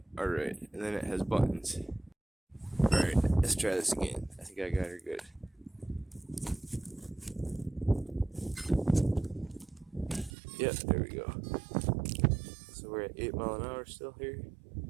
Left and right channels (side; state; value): left; drops out; at 10.3 s